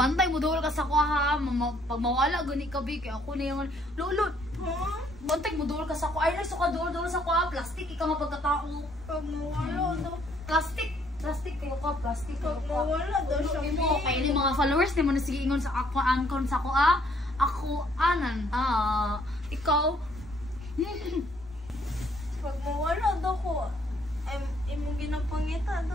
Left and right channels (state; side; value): normal; both; correlation 0.66